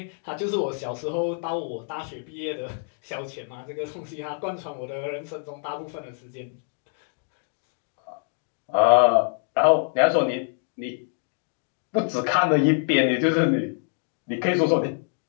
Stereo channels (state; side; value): silent; right; 59 dB below the other